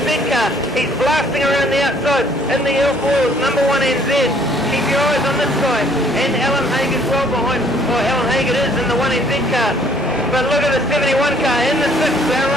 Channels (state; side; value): normal; both; correlation 0.60